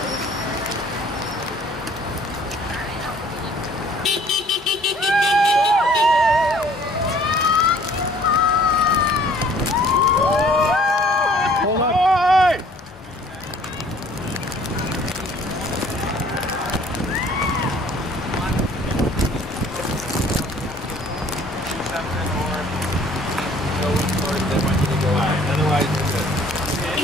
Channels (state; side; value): normal; both; correlation 0.56